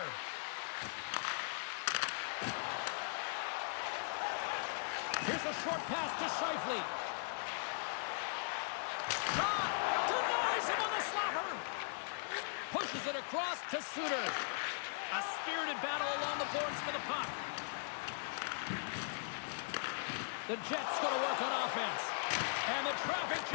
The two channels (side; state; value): right; silent; digital silence